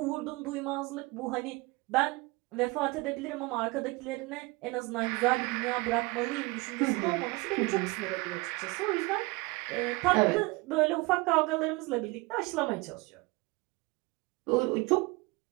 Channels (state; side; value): quieter; left; 24.6 dB